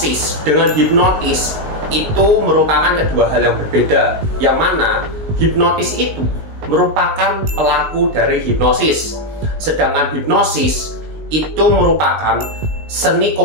dengan hipnotis itu merupakan kedua hal yang berbeda, yang mana hipnotis itu merupakan pelaku dari hipnosis, sedangkan hipnosis itu merupakan seni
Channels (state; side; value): late; left; 19 ms